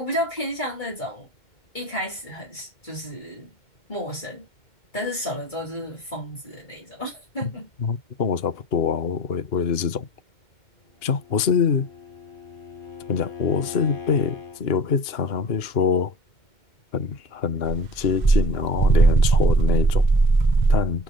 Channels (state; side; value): late; right; 2.1 ms